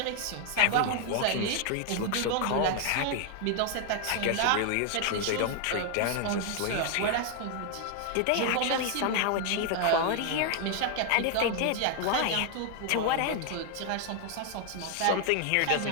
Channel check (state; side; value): different; both; correlation 0.01